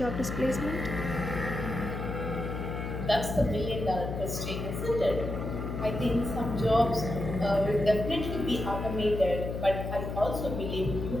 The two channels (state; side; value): noise; left; hum, 4 dB below the sound